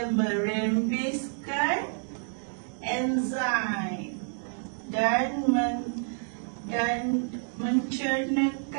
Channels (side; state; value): left; silent; 56 dB below the other